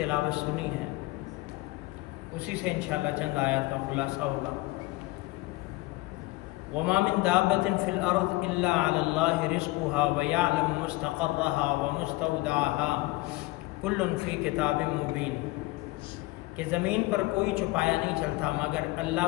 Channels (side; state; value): right; quieter; 20.7 dB